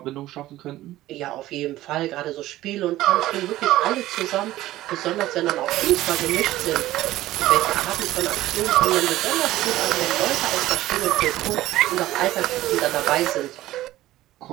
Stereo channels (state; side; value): quieter; left; 15.6 dB